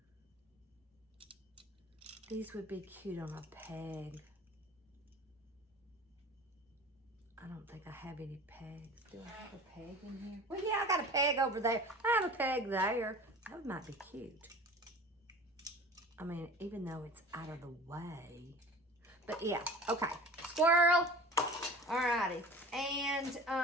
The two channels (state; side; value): normal; both; correlation 0.41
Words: These would be cute on a peg. I don't think I have any pegs. Do I have a peg in here? Well, yeah, I got a peg over there. I have a peg there. That might be cute. I mean, even though it's out of the way. But yeah, okay. Squirrel. Alrighty. And